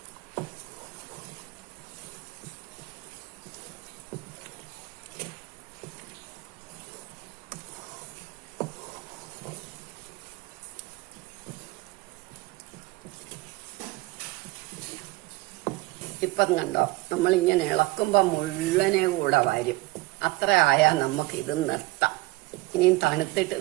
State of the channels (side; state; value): left; quieter; 21.0 dB